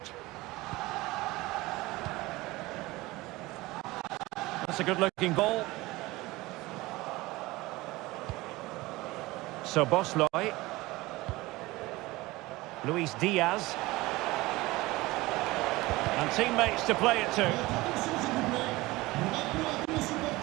That's a good-looking ball. So Bosloy. Luis Diaz. And teammates to play it to.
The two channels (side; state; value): left; quieter; 20.3 dB